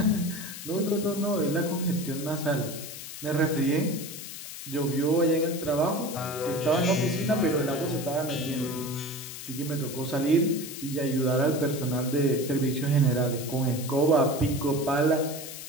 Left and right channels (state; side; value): noise; left; hiss, 10 dB below the sound